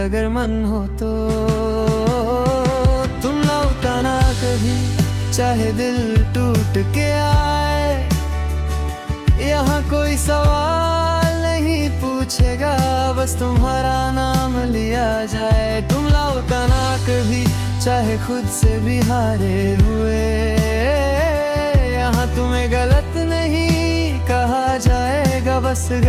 मन हो तो। तुम लौटाना कभी चाहे दिल टूट के आए, यहाँ कोई सवाल नहीं पूछेगा, बस तुम्हारा नाम लिया जाए। तुम लौटाना कभी चाहे खुद से भी हारे हुए, यहाँ तुम्हें गलत नहीं कहा जाएगा, बस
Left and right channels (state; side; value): identical; both; correlation 1.00